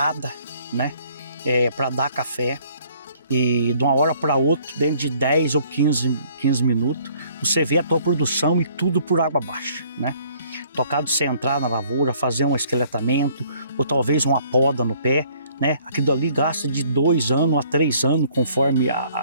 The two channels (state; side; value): inverted; both; correlation -0.61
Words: né? Para dar café. E de uma hora para outra, dentro de 10 ou 15 minutos, você vê a tua produção e tudo por água abaixo, né? Tocado de você entrar na lavoura, fazer um esqueletamento, ou talvez uma poda no pé, né? Aquilo ali gasta de 2 anos a 3 anos, conforme